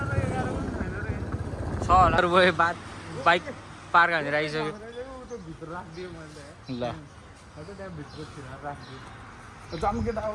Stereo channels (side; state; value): both; identical; correlation 1.00